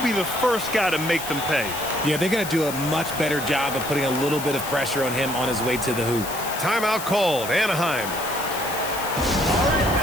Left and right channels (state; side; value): noise; left; hiss, 9 dB below the sound